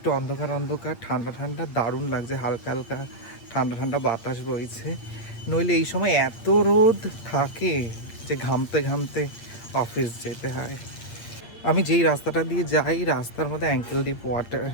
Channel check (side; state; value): right; late; 8.7 ms